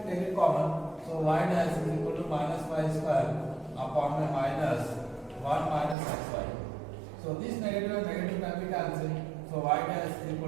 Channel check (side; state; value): left; drops out; at 6.0 s